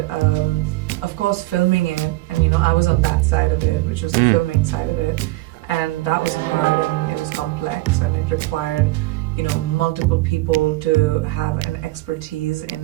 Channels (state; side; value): quieter; left; 19.9 dB